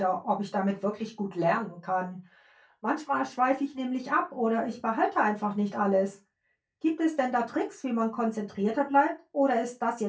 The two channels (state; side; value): identical; both; correlation 1.00